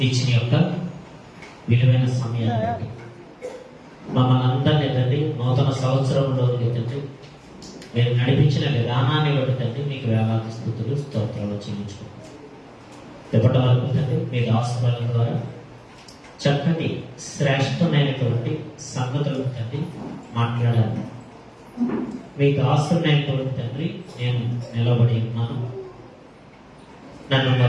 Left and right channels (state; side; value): identical; both; correlation 1.00